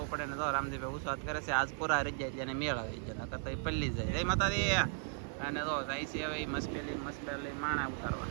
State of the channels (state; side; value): silent; left; 53 dB below the other